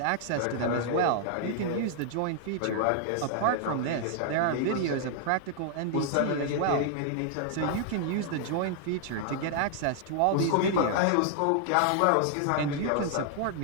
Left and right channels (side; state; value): both; different; correlation 0.00